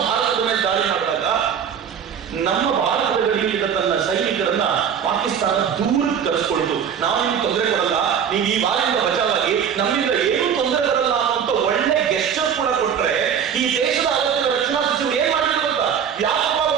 ಭಾರತದ ಮೇಲೆ ದಾಳಿ ಮಾಡಿದಾಗ ನಮ್ಮ ಭಾರತದ ಗಡಿಯಿಂದ ತನ್ನ ಸೈನಿಕರನ್ನ ಪಾಕಿಸ್ತಾನ ದೂರಕ್ಕೆ ಕರೆಸ್ಕೊಳ್ತು. ನಾವು ನಿಮ್ಗೆ ತೊಂದರೆ ಕೊಡಲ್ಲ, ನೀವು ಈ ಬಾರಿಯಿಂದ ಬಚಾವಾಗಿ ನಮ್ಮಿಂದ ಏನೂ ತೊಂದರೆ ಬರಲ್ಲ ಅನ್ನುವಂತ ಒಳ್ಳೆ ಗೆಸ್ಚರ್ ಕೂಡ ಕೊಟ್ರೆ ಈ ದೇಶದ ಅವತ್ತಿನ ರಕ್ಷಣಾ ಸಚಿವರು ಏನ್ ಮಾಡಿದ್ರು ಗೊತ್ತಾ? ಯಾಕಪ್ಪ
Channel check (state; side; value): quieter; left; 7.9 dB